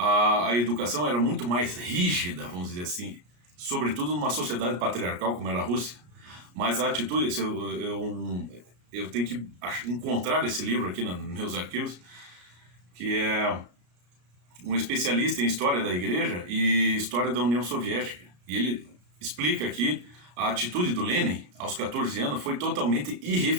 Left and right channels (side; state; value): left; late; 34 ms